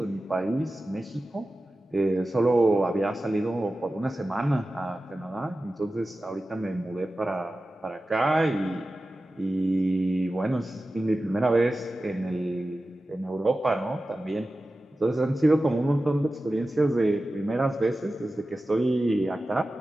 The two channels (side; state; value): both; normal; correlation 0.94